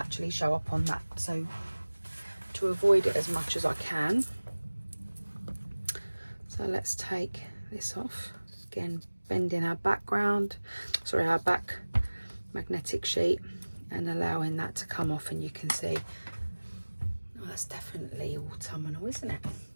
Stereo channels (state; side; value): inverted; both; correlation -1.00